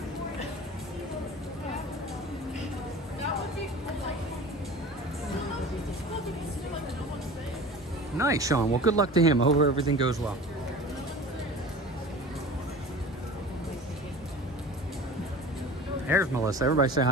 Nice, Sean. Well, good luck to him. I hope everything goes well. There's Melissa. Everybody say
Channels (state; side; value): normal; both; correlation 0.38